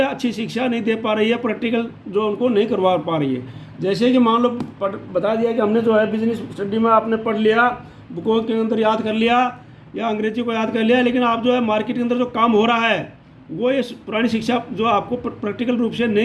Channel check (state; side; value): identical; both; correlation 1.00